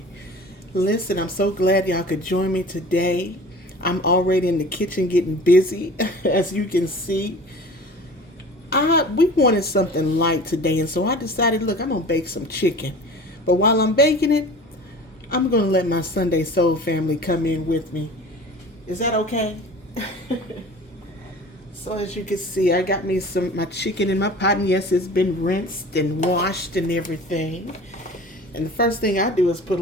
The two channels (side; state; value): both; normal; correlation 0.41